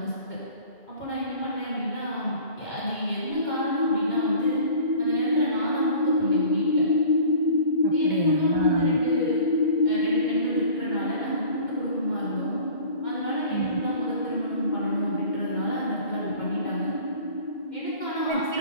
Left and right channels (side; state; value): right; late; 2.1 ms